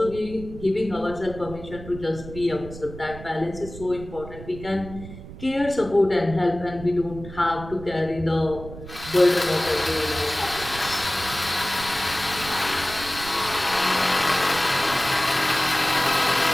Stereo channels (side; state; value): right; noise; rumble, 13 dB below the sound